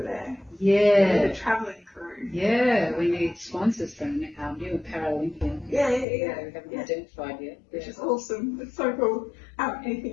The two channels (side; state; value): right; drops out; at 6.1 s